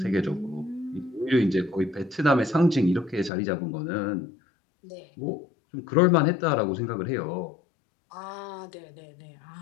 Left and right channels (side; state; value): right; drops out; at 3.3 s